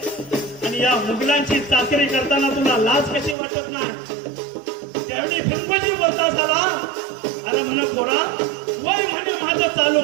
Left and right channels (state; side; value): drops out; left; at 3.4 s